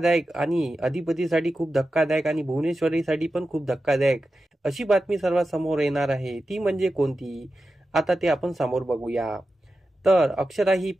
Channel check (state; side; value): normal; both; correlation 0.92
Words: आणि अधिपतीसाठी खूप धक्कादायक आणि भुवनेश्वरीसाठी पण खूप धक्कादायक अशी बातमी सर्वात समोर येणार आहे. ती म्हणजे कोणती, आता ते आपण समोर बघूया. तर अक्षरा ही